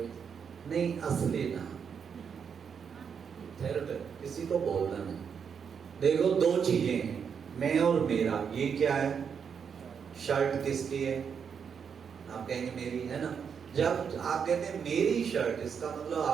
नहीं, असली नाम किसी को बोलना नहीं। देखो 2 चीजें हैं, मैं और मेरा। ये क्या है? शर्ट किसकी है? आप कहेंगे मेरी है ना। जब आप कहते हैं मेरी शर्ट, इसका मतलब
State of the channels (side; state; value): left; quieter; 6.9 dB